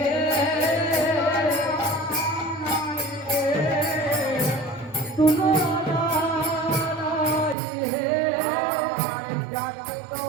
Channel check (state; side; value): drops out; left; at 7.6 s